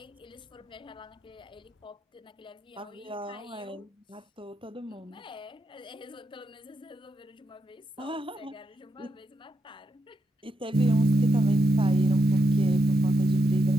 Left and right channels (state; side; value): normal; both; correlation 0.83